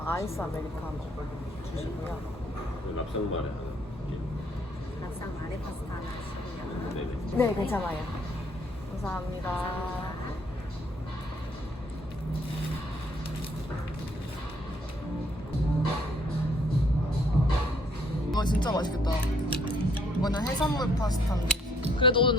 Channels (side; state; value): both; normal; correlation 0.65